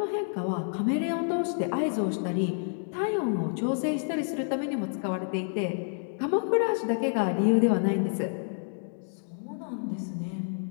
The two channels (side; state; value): right; silent; digital silence